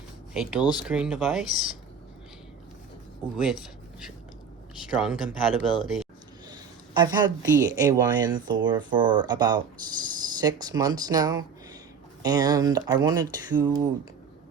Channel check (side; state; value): left; quieter; 6.0 dB